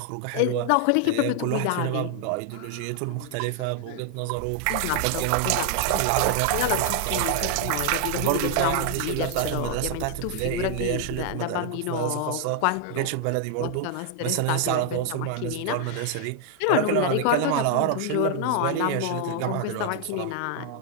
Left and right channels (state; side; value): different; both; correlation 0.00